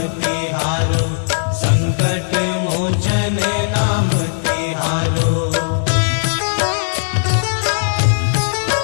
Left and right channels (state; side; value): silent; right; digital silence